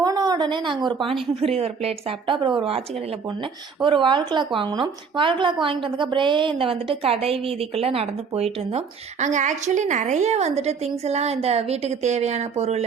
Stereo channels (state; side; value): quieter; left; 5.8 dB